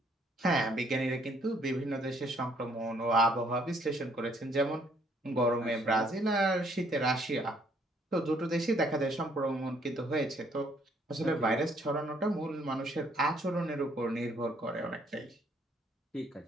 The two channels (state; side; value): normal; both; correlation 0.65